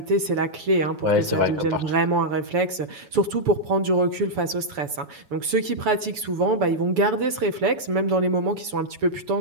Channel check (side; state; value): left; late; 7.0 ms